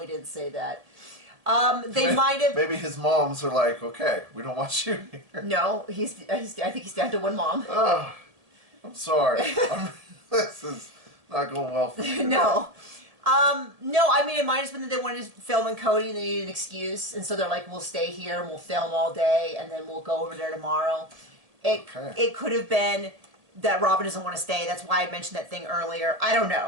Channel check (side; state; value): left; late; 1.8 ms